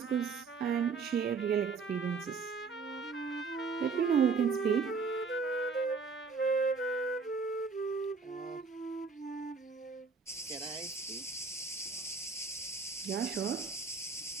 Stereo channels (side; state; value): left; quieter; 5.0 dB